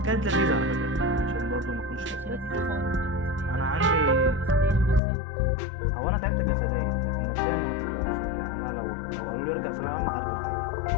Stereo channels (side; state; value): right; drops out; at 5.0 s